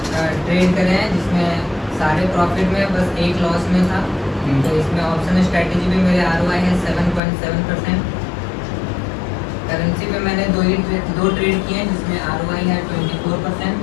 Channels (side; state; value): right; drops out; at 7.2 s